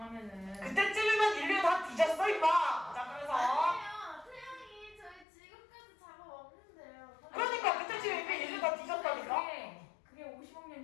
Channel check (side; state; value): right; drops out; at 5.2 s